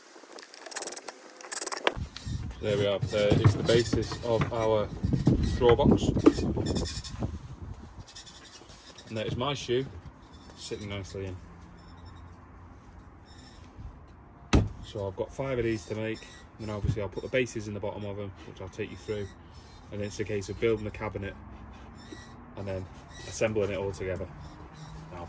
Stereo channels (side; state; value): both; identical; correlation 1.00